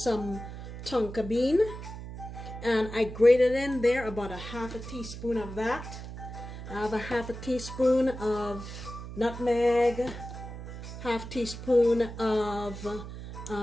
some Tonka bean. And I grated in there about a half a teaspoon of that. I have a half a teaspoon of nutmeg, half teaspoon of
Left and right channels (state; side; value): noise; right; hum, 10 dB below the sound